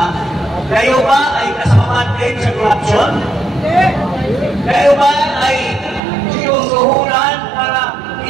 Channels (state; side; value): drops out; left; at 6.0 s